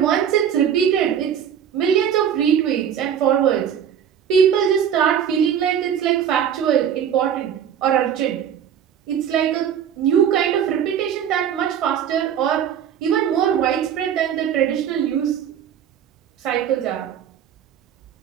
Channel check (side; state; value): left; quieter; 8.9 dB